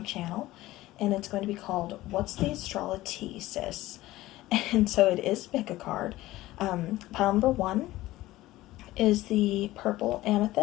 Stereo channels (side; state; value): right; quieter; 17.0 dB